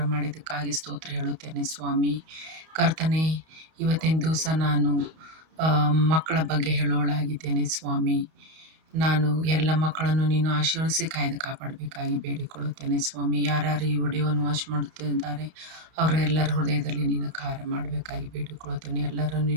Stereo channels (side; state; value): left; late; 31 ms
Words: ಮಾಡಿದ್ದಕ್ಕಾಗಿ ಸ್ತೋತ್ರ ಹೇಳುತ್ತೇನೆ ಸ್ವಾಮಿ. ಕರ್ತನೆ, ಇವತ್ತಿನ ದಿವಸ ನಾನು ಮಕ್ಕಳ ಬಗ್ಗೆ ಹೇಳೋಳಾಗಿದ್ದೇನೆ ಸ್ವಾಮಿ. ನಾನು ಎಲ್ಲ ಮಕ್ಕಳನ್ನು ನೀನು ಆಶೀರ್ವದಿಸಿ ಕಾಯ್ದು ಕಾಪಾಡಬೇಕಾಗಿ ಬೇಡಿಕೊಳ್ಳುತ್ತೇನೆ ಸ್ವಾಮಿ. ಯಾರ್ಯಾರು ಈ ವಿಡಿಯೋವನ್ನು ವಾಚ್ ಮಾಡುತ್ತಿದ್ದಾರೆ ಅವರೆಲ್ಲರ ಹೃದಯದಲ್ಲಿ ನೀನು ಕಾರ್ಯ ಮಾಡಬೇಕಾಗಿ ಬೇಡಿಕೊಳ್ಳುತ್ತೇನೆ. ಎಲ್ಲರನ್ನು